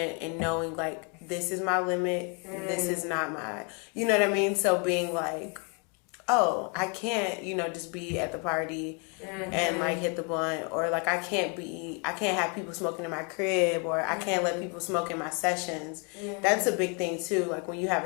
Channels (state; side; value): quieter; right; 35.4 dB